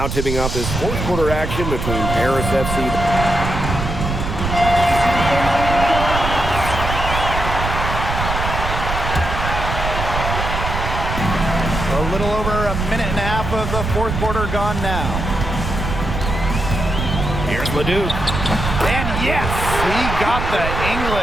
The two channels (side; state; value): right; noise; rumble, 4 dB below the sound